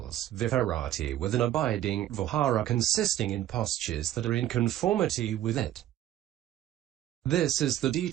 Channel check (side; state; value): left; quieter; 12.8 dB